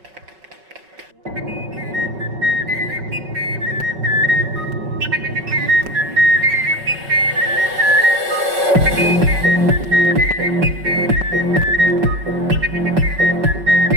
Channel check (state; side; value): late; left; 5.4 ms